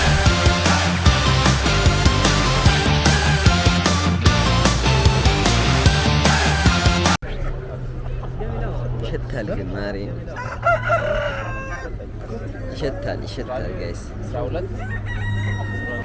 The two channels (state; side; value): identical; both; correlation 1.00